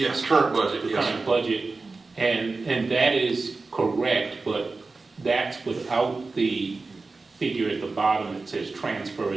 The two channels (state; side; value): quieter; left; 3.8 dB